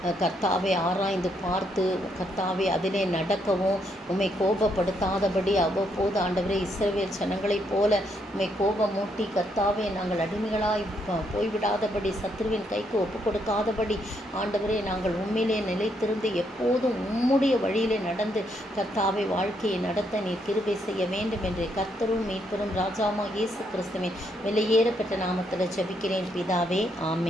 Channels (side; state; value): both; normal; correlation 0.75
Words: கர்த்தாவை ஆராய்ந்து பார்த்து கர்த்தாவை அதிலே நடக்கவும் உம்மை கோபப்படுத்தாதபடி அவ்வப்போது ஆண்டவரே இஸ்ரவேல் ஜனங்களைப் போல உம்மை கோபமூட்டி கர்த்தாவே நாங்கள் அடிமைகளாய் போய்விடாதபடி சத்ருவின் கைக்கு ஒப்பு கொடுக்காதபடி ஆண்டவரே நாங்கள் உண்மையிலே நிலைத்திருந்து எப்போதும் உம்முடைய வழியிலே நடந்து கர்த்தாவை வாழ்க்கையை நடத்த நீர் கிருபை செய்ய வேண்டும் என்று கர்த்தரும் மீட்பரும் ராஜாமா இயேசு கிறிஸ்துவின் விலையேறப்பட்ட நாமத்தில் ஜெபிக்கிறேன் பிதாவே,